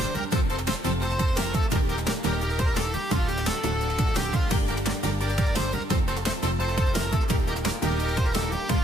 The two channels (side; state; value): both; normal; correlation 0.73